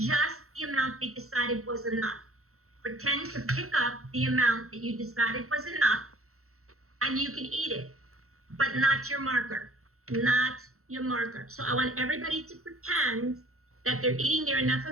the amount they decided was enough. Pretend to pick up the amount that you decided was enough, and you can eat it, but not your marker, not your marker. So I want everybody to pretend that they're eating their enough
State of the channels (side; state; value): left; late; 0.63 ms